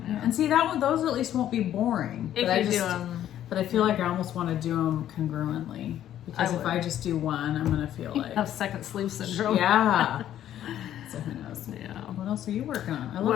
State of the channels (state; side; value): quieter; right; 11.5 dB